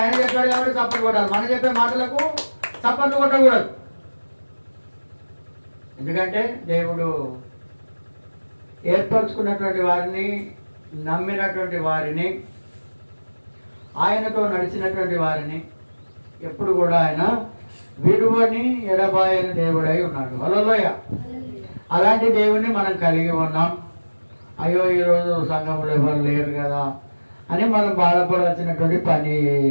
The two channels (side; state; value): both; inverted; correlation -1.00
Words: చెప్పాడు కాబట్టి చప్పట్లు కొట్టాలి. మనం చెప్పే మాటలకు చప్పట్లు కొట్టకూడదు. ఎందుకంటే దేవుడు ఏర్పరచుకున్నటువంటి వారిని, నమ్మినటువంటి వారిని, ఆయనతో నడిచినటువంటి వారిని ఎప్పుడు కూడా ఆయన విడువని ఎడబాయని దేవుడై ఉన్నాడు. హల్లెలూయ. అలాంటి దేవుణ్ణి మనం కలిగి ఉన్నాం. అయ్యో ఈరోజు సంఘంలో ఎవరు లేరు కదా అని మనం బాధపడాల్సినటువంటి పని